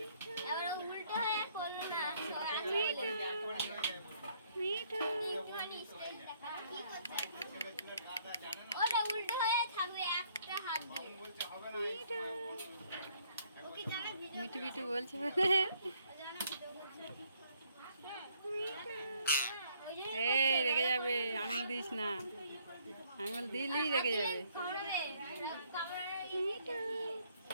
আবার উল্টো হয়ে করলো না, মিঠু মিঠু একটুখানি স্টাইল দেখা কি করছে? ওটা উল্টো হয়ে থাকবে একটা হাত দিয়ে। মিঠু ওকে জানা ভিডিও মিঠু মিঠু বলছে জানা ভিডিও করছে। ওই যে এই রেগে যাবে, আঙুল দিস না, আঙুল দিলেই রেগে যাবে। কামড়াবে, কামড়াবে। মিঠু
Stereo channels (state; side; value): inverted; both; correlation -0.66